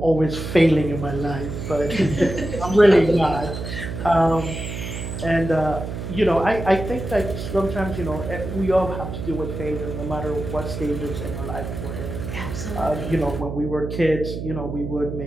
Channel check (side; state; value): right; noise; hum, 6 dB below the sound